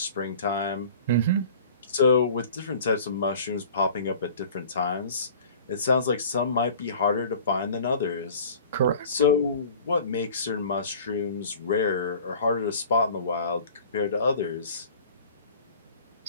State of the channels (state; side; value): inverted; both; correlation -0.46